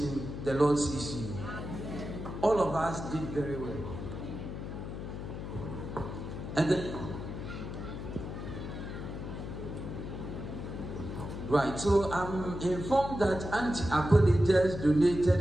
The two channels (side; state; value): left; noise; hum, 7 dB below the sound